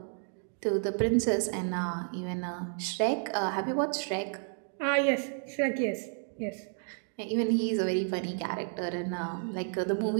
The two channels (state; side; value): silent; left; 57 dB below the other